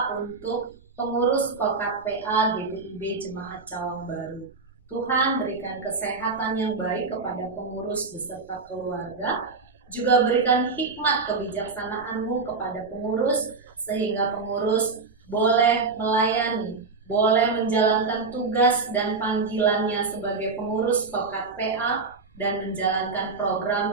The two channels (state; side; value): quieter; left; 4.3 dB